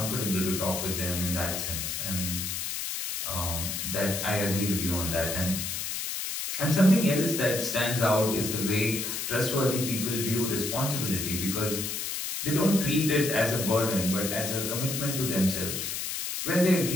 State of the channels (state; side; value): noise; left; hiss, 3 dB below the sound